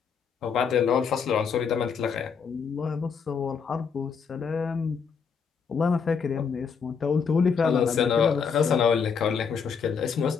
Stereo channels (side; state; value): right; quieter; 6.2 dB